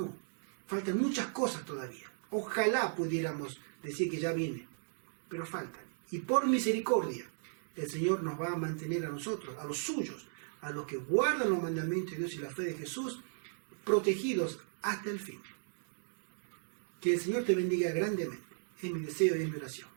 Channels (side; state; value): left; silent; digital silence